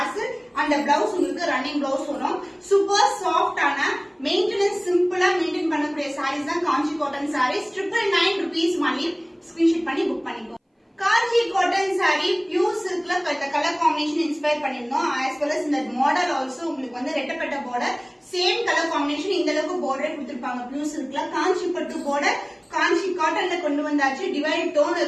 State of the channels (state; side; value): identical; both; correlation 1.00